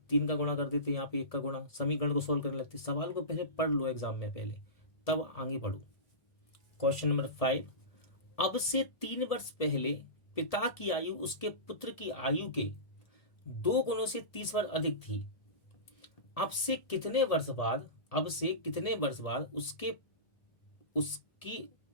3 का गुणा कर देते, यहाँ पे 1 का गुणा, समीकरण को सोल्व करने लगते। सवाल को पहले पढ़ लो एग्जाम में पहले, तब आगे बढ़ो। क्वेश्चन नंबर 5, अब से 3 वर्ष पहले पिता की आयु उसके पुत्र की आयु के 2 गुणों से 30 वर्ष अधिक थी, अब से कितने वर्ष बाद, अब से कितने वर्ष बाद उसकी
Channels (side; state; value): right; late; 1.7 ms